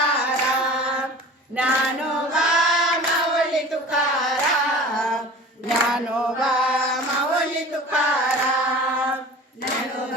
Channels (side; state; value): both; normal; correlation 0.40